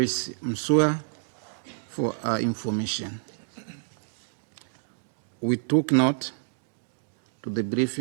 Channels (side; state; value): left; silent; digital silence